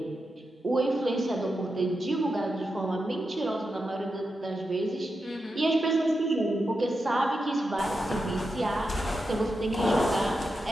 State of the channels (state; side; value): normal; both; correlation 0.88